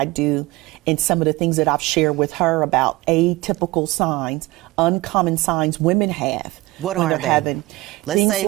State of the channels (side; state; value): left; quieter; 20.2 dB